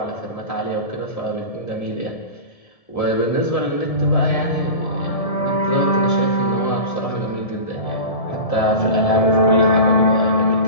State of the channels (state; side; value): late; right; 1.7 ms